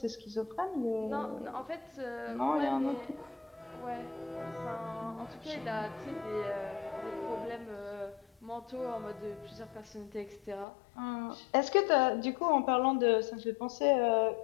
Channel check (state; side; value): drops out; right; at 10.7 s